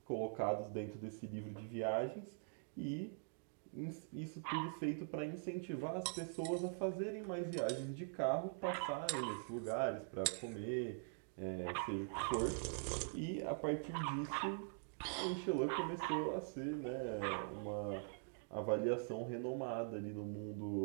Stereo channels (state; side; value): silent; left; digital silence